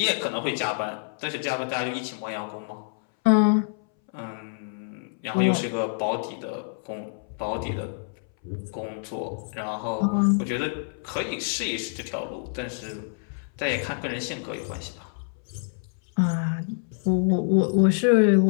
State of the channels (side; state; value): right; silent; 60 dB below the other